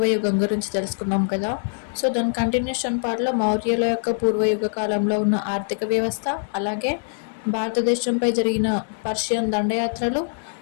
గురించి తెలుసుకున్నాం కదా. సో దాని కంటిన్యూషన్ పార్ట్లో మౌర్యుల యొక్క పూర్వయుగ కాలంలో ఉన్న ఆర్థిక వ్యవస్థ, అలాగే భారతదేశంపై జరిగిన పర్షియన్ దండయాత్రలు,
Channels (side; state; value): right; silent; digital silence